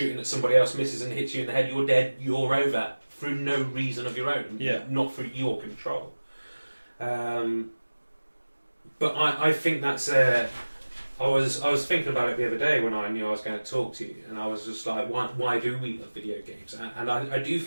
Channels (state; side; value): inverted; both; correlation -1.00